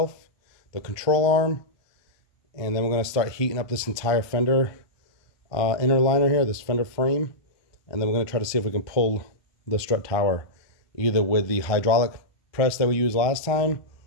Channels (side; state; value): right; late; 1.2 ms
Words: the control arm, and then we're going to start heating up this entire fender inner liner here, this fender frame. And then we're going to try to see if we can pull the strut tower either with the hydraulic press that we used last time,